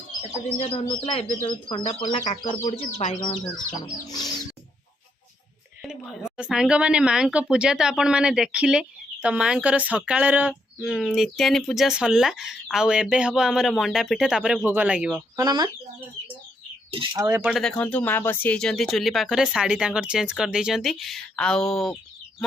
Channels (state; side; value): normal; both; correlation 0.76